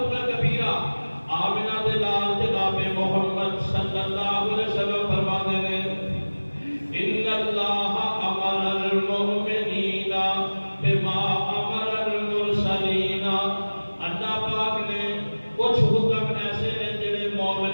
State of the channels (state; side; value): inverted; both; correlation -1.00